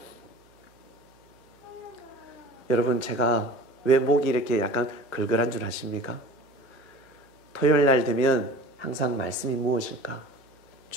여러분, 제가 왜 목이 이렇게 약간 걸걸한 줄 아십니까? 토요일 날 되면 항상 말씀이 무엇일까?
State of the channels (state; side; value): normal; both; correlation 0.41